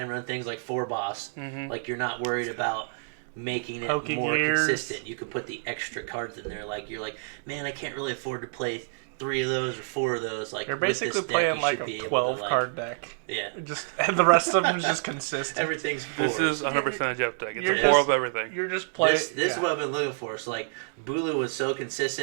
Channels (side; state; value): left; silent; digital silence